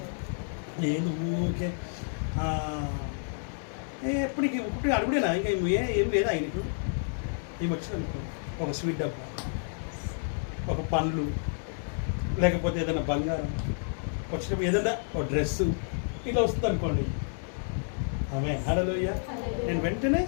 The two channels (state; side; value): silent; right; digital silence